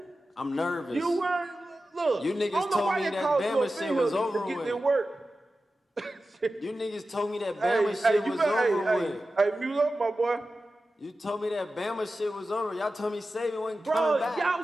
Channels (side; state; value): both; normal; correlation 0.93